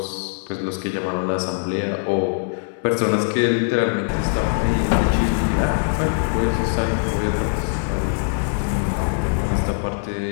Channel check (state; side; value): silent; right; 64 dB below the other